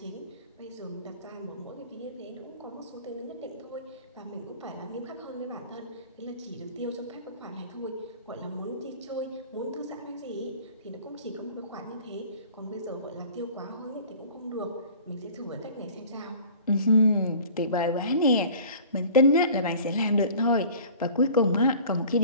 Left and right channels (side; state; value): both; inverted; correlation -0.45